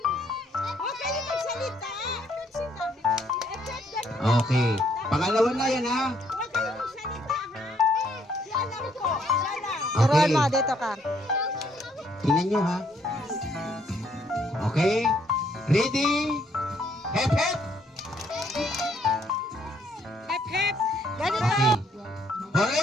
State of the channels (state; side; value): normal; both; correlation 0.69